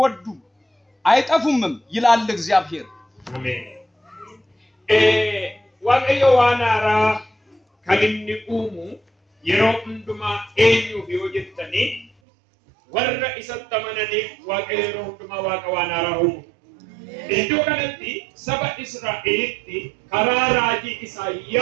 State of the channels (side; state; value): left; drops out; at 12.1 s